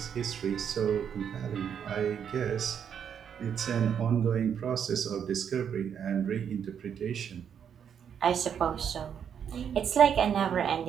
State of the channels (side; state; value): left; quieter; 8.1 dB